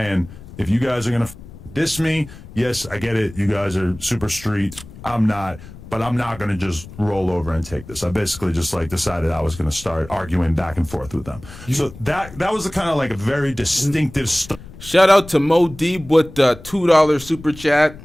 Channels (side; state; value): left; noise; rumble, 17 dB below the sound